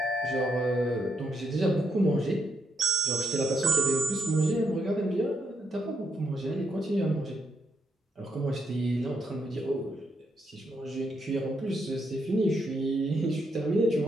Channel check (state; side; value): normal; both; correlation 0.77